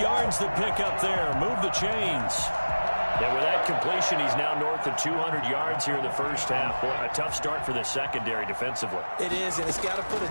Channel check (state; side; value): inverted; both; correlation -1.00